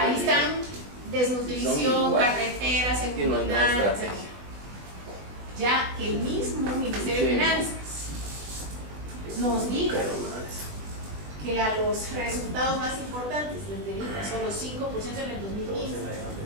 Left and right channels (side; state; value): left; late; 20 ms